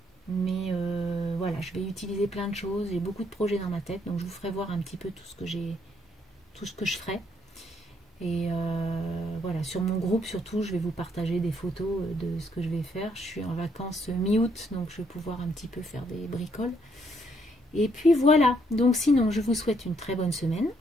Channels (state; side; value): normal; both; correlation 0.71